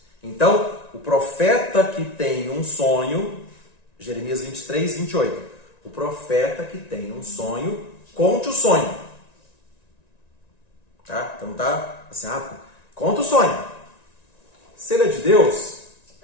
Então, o profeta que tem um sonho, Jeremias 23, 28, o profeta que tem um sonho, conte o sonho. Tá? Então tá assim, conta o sonho. Se ele é de Deus,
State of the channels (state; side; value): late; right; 1.9 ms